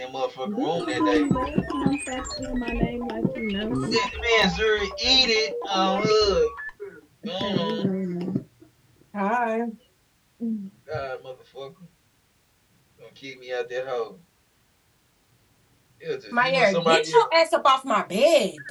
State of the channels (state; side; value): identical; both; correlation 1.00